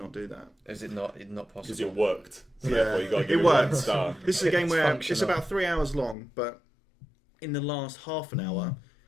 do that. Is it not possible? Because it worked. So Yeah, therefore you got to give it it one worked. star. This is a game It's where functional. it's about 3 hours long, but in the last half an hour,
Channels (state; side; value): drops out; right; at 6.2 s